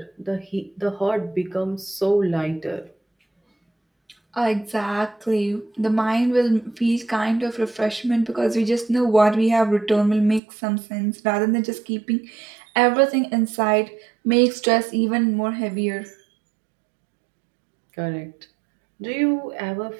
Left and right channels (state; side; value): drops out; left; at 10.4 s